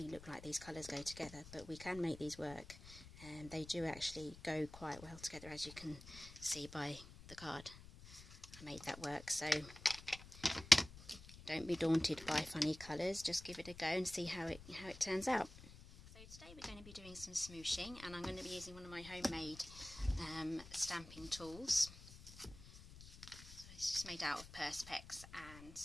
look like these colours go together, but we can make these work, and they do actually go quite well together, as you can see by the card. I made that work, so don't be daunted by funny colours, just give it a go and see how it turns out. So today we're going to be doing some smooshing, and I'm going to be using one of my homemade stamping tools. So it's just made out of Perspex and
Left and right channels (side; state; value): left; noise; rumble, 16 dB below the sound